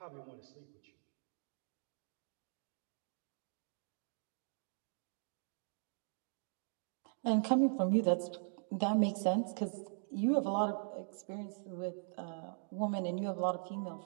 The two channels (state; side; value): silent; left; digital silence